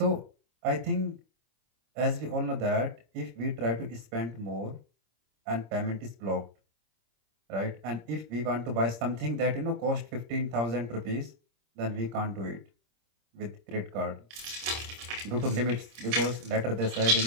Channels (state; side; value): late; left; 26 ms